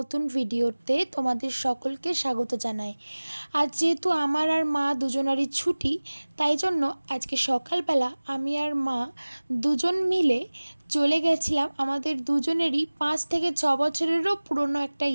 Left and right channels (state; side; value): inverted; both; correlation -1.00